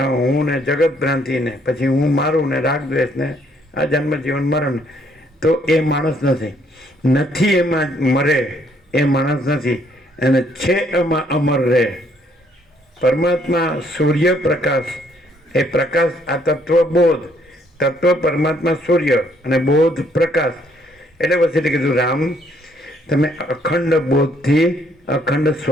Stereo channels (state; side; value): normal; both; correlation 0.67